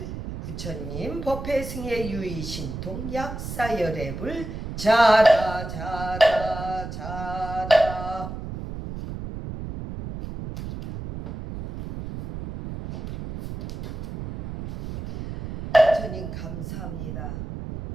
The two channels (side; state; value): right; noise; rumble, 8 dB below the sound